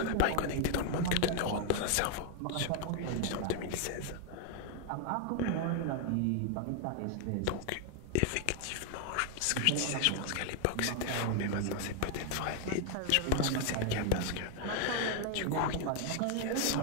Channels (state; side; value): different; both; correlation 0.00